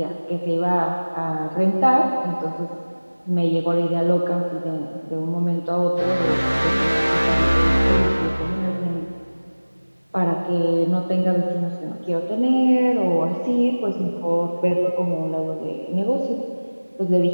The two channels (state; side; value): inverted; both; correlation -1.00